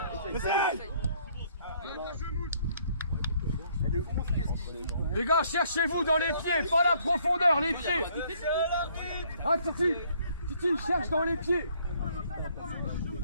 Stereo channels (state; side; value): inverted; both; correlation -0.64